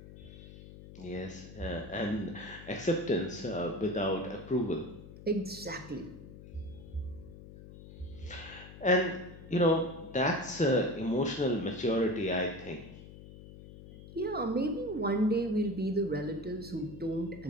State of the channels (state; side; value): noise; left; hum, 16 dB below the sound